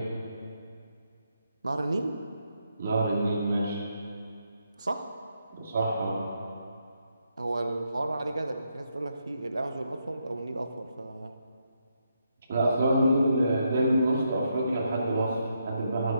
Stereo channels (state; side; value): inverted; both; correlation -0.79